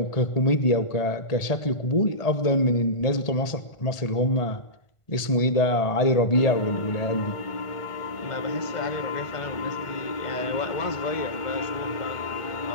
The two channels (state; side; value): late; right; 1.5 ms